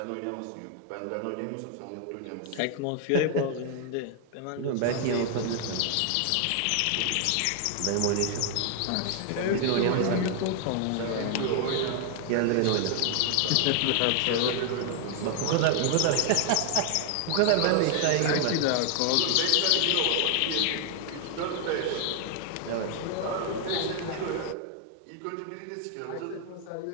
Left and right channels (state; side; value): different; both; correlation 0.00